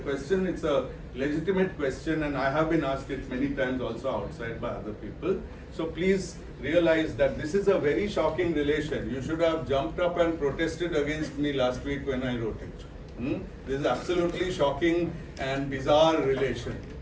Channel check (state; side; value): identical; both; correlation 1.00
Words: question. It's a legitimate question, and I have been asked it many times also outside by other people. So please realize that this is a very shocking relation. You should have jumped up and protested against me last week when I wrote it. This is absolutely shocking and bizarre relation.